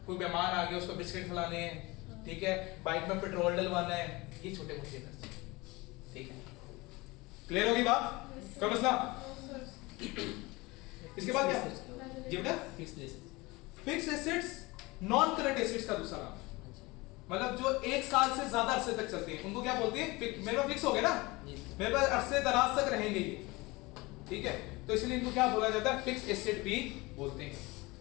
कोई मेहमान आ गया उसको बिस्किट खिलाने हैं, ठीक है, बाइक में पेट्रोल डलवाना है, ये छोटे मोटे खर्चे, ठीक है। क्लियर होगी बात, कोई मसला। इसके बाद क्या, जी बेटा, fixed assets. Fix assets non current assets का दूसरा नाम, मतलब जो एक साल से ज्यादा अरसे तक चलते हैं उनको क्या बोलते हैं, मेरे पास फिक्स हो गए ना, मेरे पास अरसे दराज तक रहेंगे ये, ठीक है, तो इसलिए इनको क्या बोला जाता है, फिक्स एसेट भी बोलते हैं।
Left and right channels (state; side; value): quieter; right; 23.0 dB